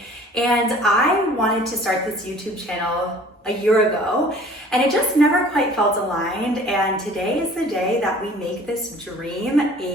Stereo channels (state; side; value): normal; both; correlation 0.49